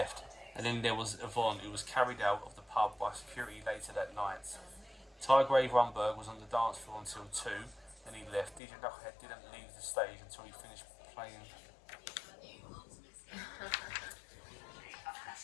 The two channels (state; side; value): drops out; right; at 8.6 s